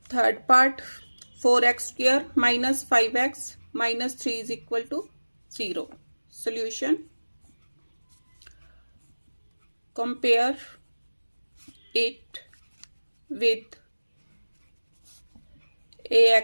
third part 4x² minus 5x minus 3 is equal to 0। Solution, compare it with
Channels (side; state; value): both; inverted; correlation -1.00